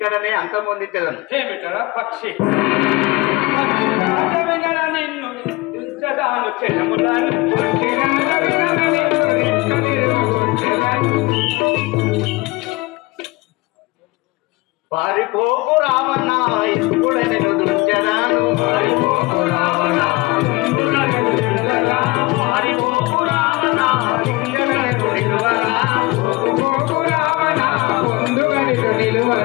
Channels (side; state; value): right; quieter; 23.1 dB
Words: అంతమొందించదను. ఏమిటరా పక్షి నిన్ను ఉంచదాను పారిపోకు రావణ ఇప్పుడు నేను దుంచదాను. పారిపోకు రావణ పారిపోకు రావణ నిలువరా. పారిపోకు రావణ ముందుగా